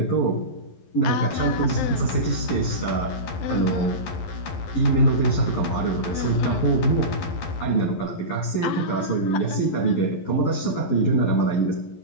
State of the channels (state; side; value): late; right; 11 ms